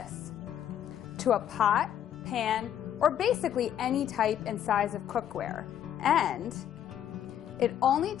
to a pot, pan, or basically any type and size of cookware. And it only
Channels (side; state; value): right; quieter; 10.3 dB